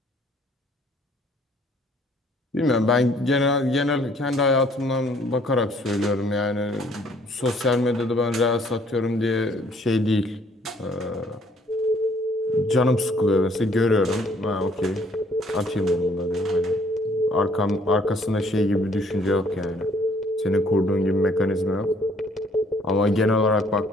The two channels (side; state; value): both; normal; correlation 0.62